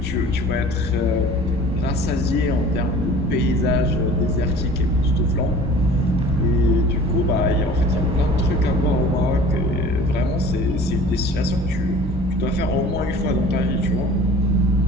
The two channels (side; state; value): both; normal; correlation 0.45